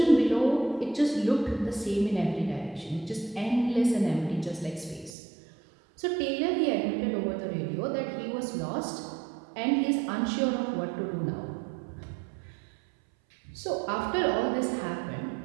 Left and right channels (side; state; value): left; drops out; at 5.1 s